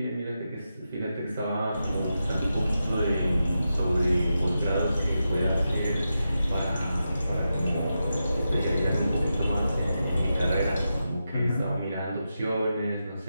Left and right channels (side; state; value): both; inverted; correlation -0.88